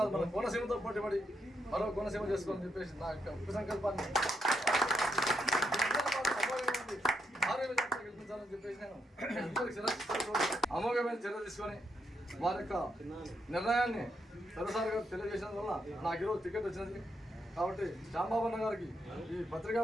మన కోనసీమతో పోటీపడి మరో కోనసీమ చేసుకోవాలని చెప్పేసి నా యొక్క ఉక్కు సంకల్పాన్ని గెలిపించాలని చెప్పేసి నేను అమోఘమైన చర్య తీసుకొని వారి యొక్క నిర్ణయాన్ని సరసారిగా తెలియజేసిన వల్ల నాకు ఈరోజు టికెట్ వచ్చినది. కాబట్టి శ్యాంబాబు అన్న గారికి ఈ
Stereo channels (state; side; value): normal; both; correlation 0.79